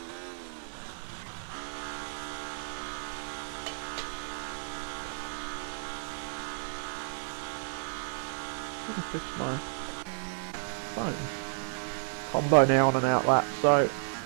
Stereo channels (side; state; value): left; silent; digital silence